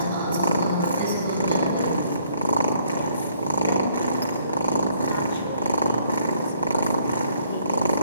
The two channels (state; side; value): inverted; both; correlation -0.66